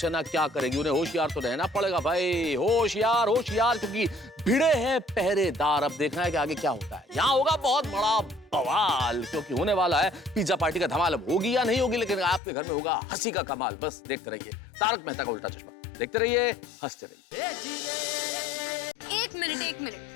क्या करेगी? उन्हें होशियार तो रहना पड़ेगा भाई, होशियार होशियार, क्योंकि भिड़े हैं पहरेदार। अब देखना है कि आगे क्या होता है। यहाँ होगा बहुत बड़ा बवाल, क्योंकि होने वाला है पिज्जा पार्टी का धमाल। अब होगी या नहीं होगी, लेकिन आपके घर में होगा हंसी का कमाल। बस देखते रहिए तारक मेहता का उल्टा चश्मा, देखते रहिए, हंसते रहिए। एक मिनट,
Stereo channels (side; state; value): right; drops out; at 12.4 s